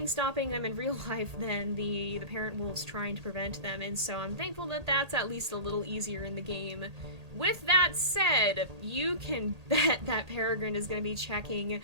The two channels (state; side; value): late; left; 1.8 ms